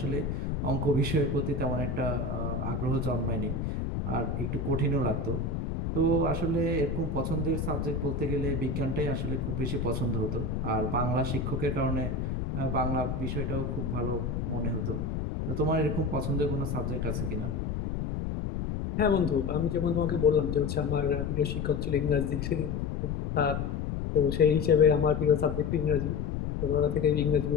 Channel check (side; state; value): left; noise; rumble, 2 dB below the sound